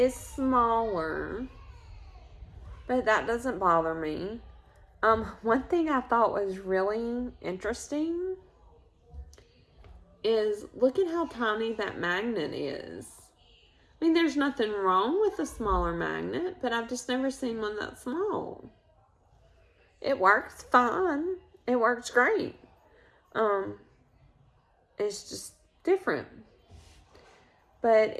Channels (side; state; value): both; identical; correlation 1.00